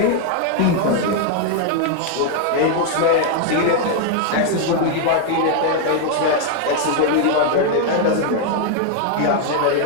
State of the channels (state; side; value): different; both; correlation 0.00